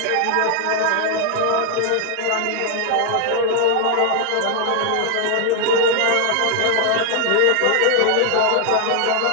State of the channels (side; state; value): both; different; correlation 0.00